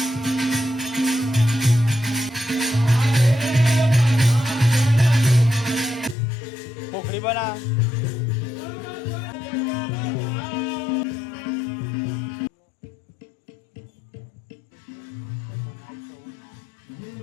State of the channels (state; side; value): drops out; right; at 6.2 s